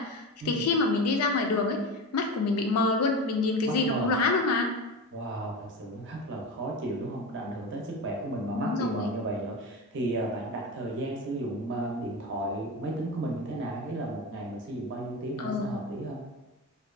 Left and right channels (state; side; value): normal; both; correlation 0.24